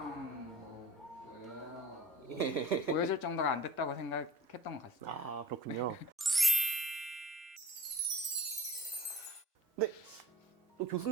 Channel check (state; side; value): normal; both; correlation 0.44